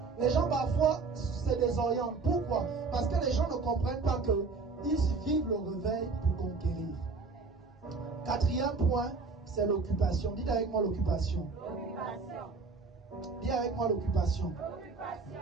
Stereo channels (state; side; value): quieter; left; 4.3 dB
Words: Les gens parfois se désorientent. Pourquoi? Parce que les gens ne comprennent pas qu'ils vivent le réveil pour conquérir. Quatrième point, c'est l'occupation. Dites avec moi l'occupation. Dis avec moi l'occupation.